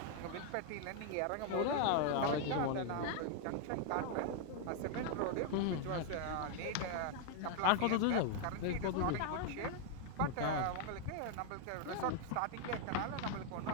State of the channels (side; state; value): both; different; correlation 0.00